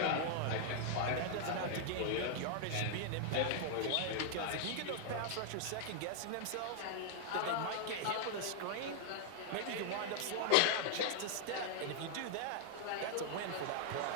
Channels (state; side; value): different; both; correlation 0.00